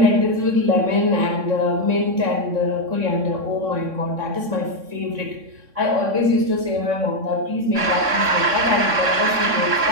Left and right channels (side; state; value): left; late; 3.6 ms